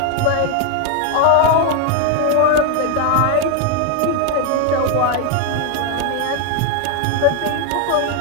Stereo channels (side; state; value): both; different; correlation 0.01